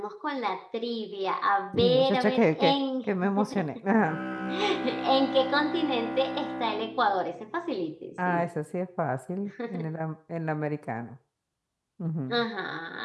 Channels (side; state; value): both; identical; correlation 1.00